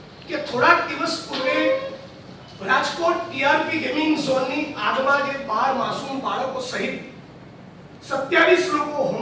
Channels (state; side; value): identical; both; correlation 1.00